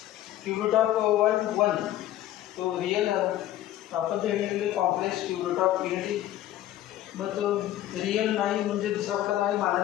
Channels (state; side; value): quieter; right; 13.4 dB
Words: क्यूब रूट ऑफ 1 तो रिअल आहे. आपण जे घेतलेले complex cube root of unity, मग तो रिअल नाही म्हणजे दुसरा प्रकार नाही